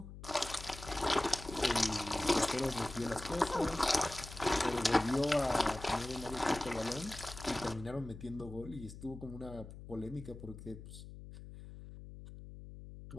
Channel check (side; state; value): left; noise; hum, 13 dB below the sound